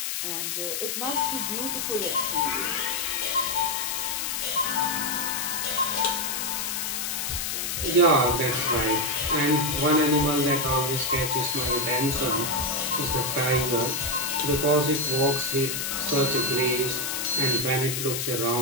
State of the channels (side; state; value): left; noise; hiss, 2 dB below the sound